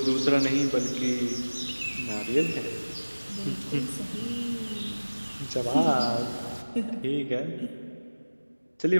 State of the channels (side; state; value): both; inverted; correlation -1.00